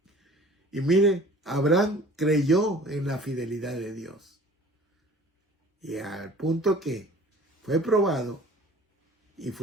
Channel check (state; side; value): normal; both; correlation 0.47